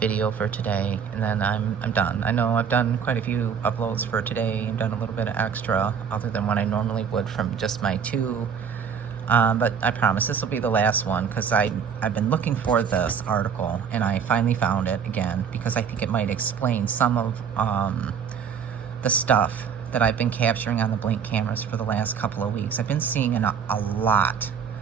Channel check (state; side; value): quieter; left; 7.0 dB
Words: for today, and then I'm done. I know I've done quite a few uploads for today. I've done a little bit of extra, other than what I normally would from just my two. But I promise this will be the last one, because I've been looking for this article, and I finally found it again, because I think it might explain some of the stuff that I've been capturing on the Blink cameras for the last couple of weeks. I've been seeing a lot